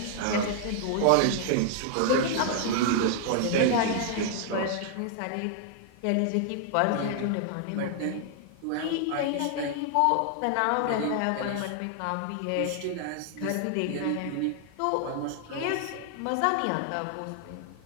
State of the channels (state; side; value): different; both; correlation 0.00